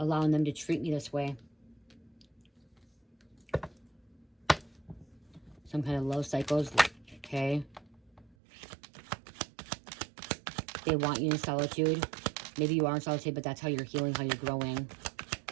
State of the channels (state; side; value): drops out; left; at 8.3 s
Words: them to treat me this way. Some kind of love cycles, okay? They want you in solitude. Maybe you are in solitude, but that's how you're healing, how you're growing.